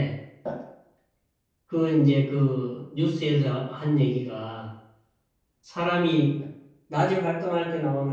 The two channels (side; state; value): both; identical; correlation 1.00